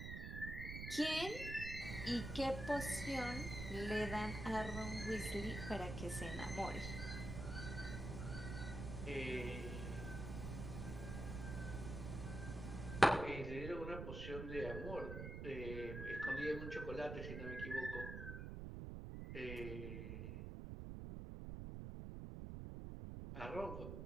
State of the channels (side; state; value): right; noise; rumble, 5 dB below the sound